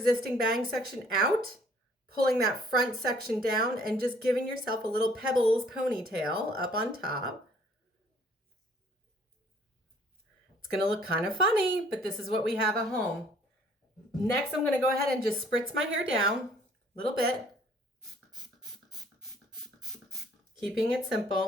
bang section out, pulling that front section down and just giving yourself a little pebbles ponytail up on top. It's gonna look kind of funny, but this is what we have at home. Next, I'm gonna go ahead and just spritz my hair down a little bit, keeping it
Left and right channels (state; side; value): normal; both; correlation 0.59